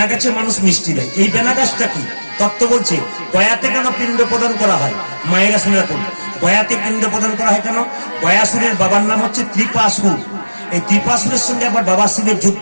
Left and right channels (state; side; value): inverted; both; correlation -1.00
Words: গাছে মানুষ মিষ্টি দেয়। এই বেনা গাছটা কি তত্ত্ব বলছে? গয়াতে কেন পিণ্ড প্রদান করা হয়? মায়েরা শুনে রাখুন, গয়াতে পিণ্ড প্রদান করা হয় কেন? গয়াসুরের বাবার নাম হচ্ছে ত্রিপাসুর। এই ত্রিপাসুরের সঙ্গে আবার বাবা শিবের